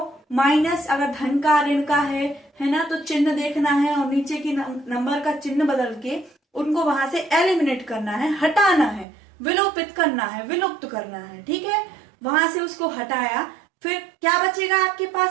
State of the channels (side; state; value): left; drops out; at 9.1 s